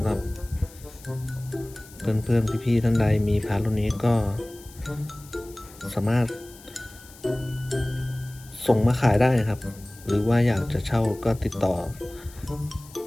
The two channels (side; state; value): left; noise; hiss, 21 dB below the sound